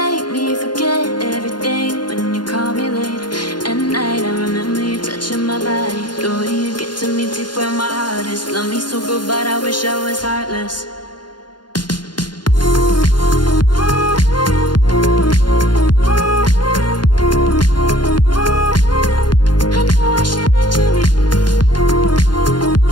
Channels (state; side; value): late; right; 0.71 ms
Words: me forget everything when you call me late at night. I remember you touching my body, the way you get to me deep where my heart is. Love me so good, but I wish I was heartless.